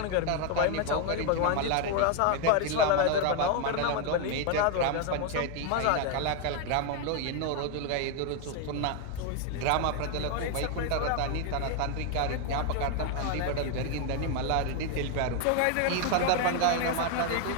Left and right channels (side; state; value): both; different; correlation 0.01